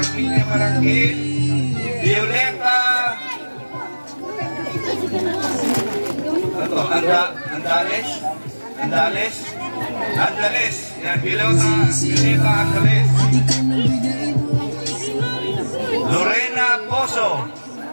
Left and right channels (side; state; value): both; inverted; correlation -1.00